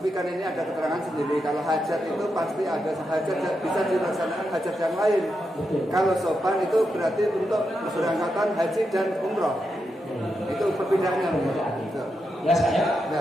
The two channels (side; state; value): both; normal; correlation 0.85